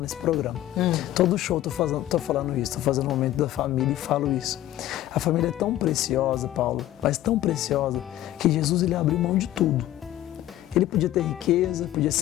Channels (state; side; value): quieter; right; 13.9 dB